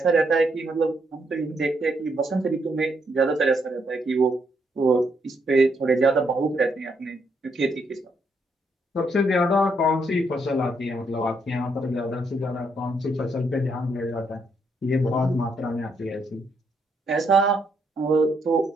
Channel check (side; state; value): both; normal; correlation 0.75